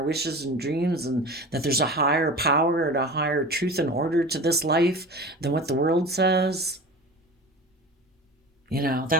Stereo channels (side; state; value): both; normal; correlation 0.35